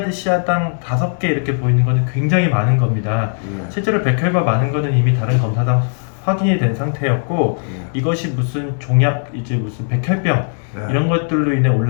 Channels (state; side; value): silent; right; 68 dB below the other